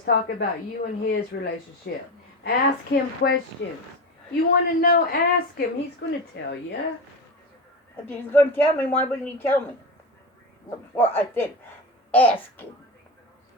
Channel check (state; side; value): normal; both; correlation 0.22